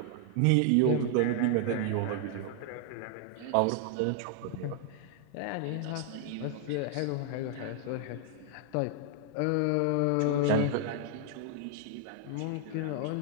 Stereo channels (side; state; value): both; different; correlation 0.00